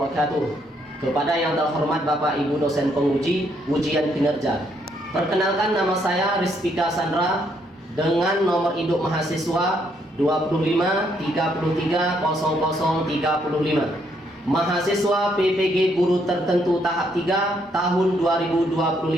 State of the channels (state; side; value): normal; both; correlation 0.72